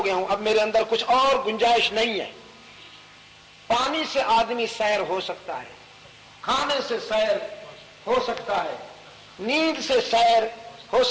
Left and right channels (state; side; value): identical; both; correlation 1.00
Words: گیا ہوں، اب میرے اندر کچھ اور گنجائش نہیں ہے۔ پانی سے آدمی سیر ہو سکتا ہے، کھانے سے سیر ہو سکتا ہے، نیند سے سیر ہو